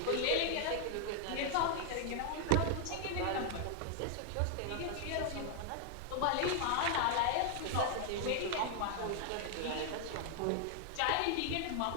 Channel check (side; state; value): both; different; correlation 0.00